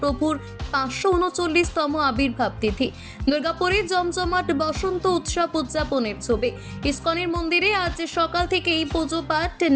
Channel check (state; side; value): identical; both; correlation 1.00